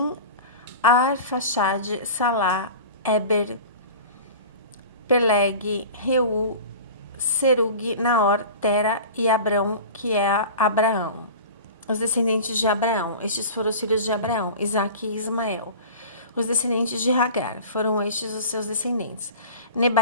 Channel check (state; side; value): inverted; both; correlation -0.37